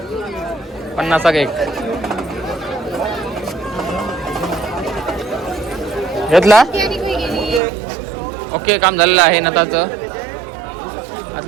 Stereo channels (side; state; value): left; drops out; at 7.6 s